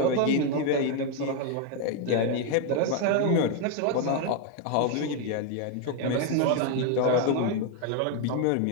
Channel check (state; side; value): different; both; correlation 0.01